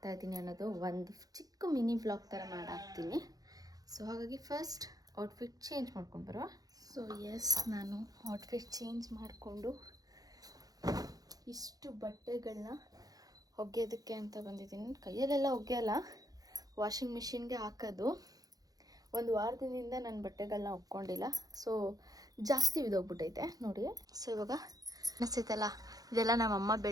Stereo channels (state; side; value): late; left; 0.18 ms